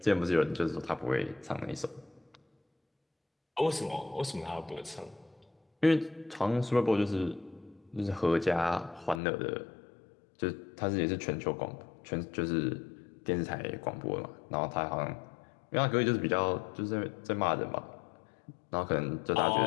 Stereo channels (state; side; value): drops out; right; at 9.2 s